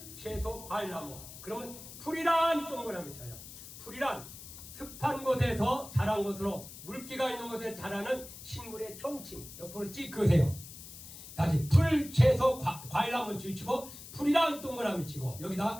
채소, 과일, 나무. 그러면 풀이란 동그라미 쳐요. 풀이란 습한 곳에서 자란 것으로 물기가 있는 곳에 자라는 식물의 총칭. 옆으로 찍 그으세요. 다시 풀, 채소, 과일 한번 치고 풀이란 동그라미 치고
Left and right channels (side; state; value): left; noise; hiss, 14 dB below the sound